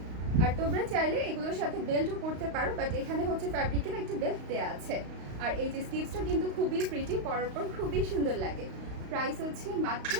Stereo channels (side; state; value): left; late; 35 ms